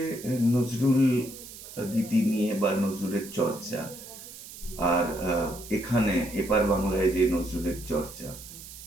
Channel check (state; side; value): noise; right; hiss, 15 dB below the sound